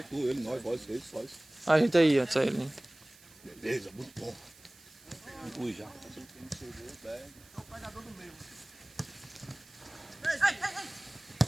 tu, ele, nós, vós. A gente aí, antes aí. Né? Beleza, muito bom. Inclui já.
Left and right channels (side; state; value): right; noise; hiss, 24 dB below the sound